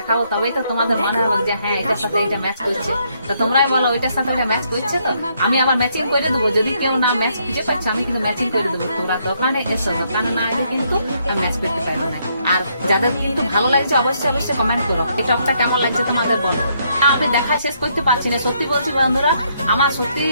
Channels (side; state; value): both; inverted; correlation -0.73